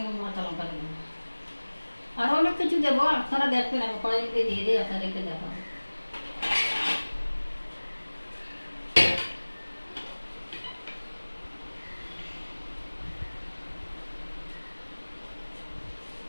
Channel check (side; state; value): both; inverted; correlation -1.00